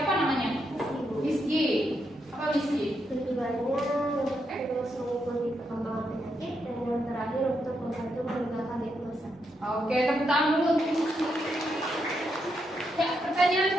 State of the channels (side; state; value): both; normal; correlation 0.81